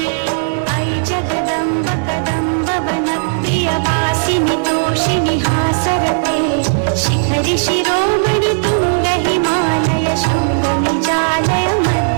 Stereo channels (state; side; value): silent; left; digital silence